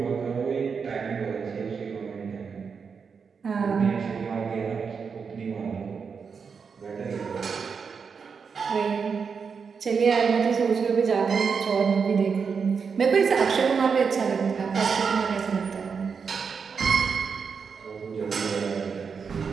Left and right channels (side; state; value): left; quieter; 5.8 dB